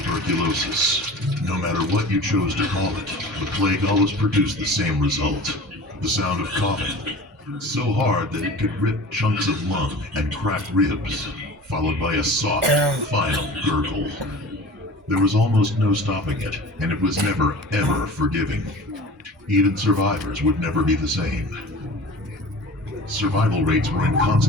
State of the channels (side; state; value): both; normal; correlation 0.39